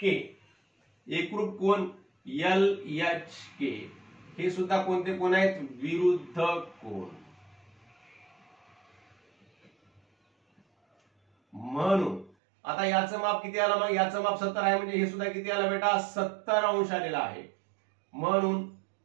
के एकरूप कोण एल एच के. हे सुद्धा कोणते कोण आहेत, विरुद्ध कोण. म्हणून आता याचं माप किती आलं, मग याचं माप 70 आहे म्हणजे हे सुद्धा किती आलं बेटा, 70 अंश आलेला आहे. म्हणून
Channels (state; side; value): drops out; left; at 12.4 s